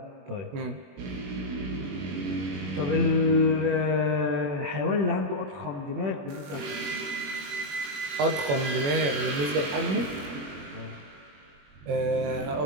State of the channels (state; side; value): late; left; 21 ms